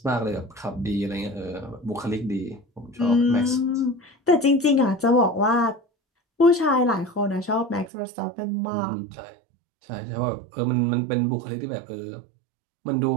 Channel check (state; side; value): drops out; left; at 7.9 s